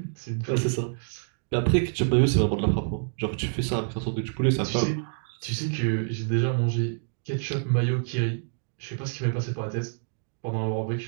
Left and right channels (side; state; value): left; silent; digital silence